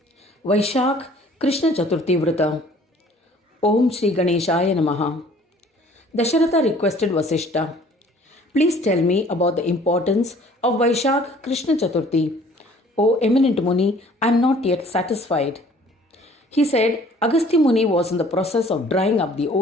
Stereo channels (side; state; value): both; normal; correlation 0.54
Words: Vaishakh Krishna Chaturthi Vrat. Om Shri Ganeshaya Namaha. Dasharatha requested Vasishta, please tell me about the importance of Vaishakh Krishna Chaturthi. O eminent Muni, I am not yet satisfied. He said Agastya Muni was in the process of drying up the